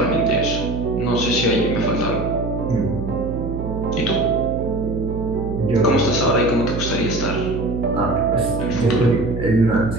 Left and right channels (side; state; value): right; noise; hum, 5 dB below the sound